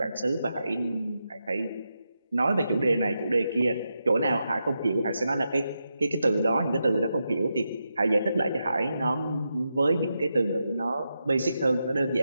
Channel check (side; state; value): both; inverted; correlation -0.86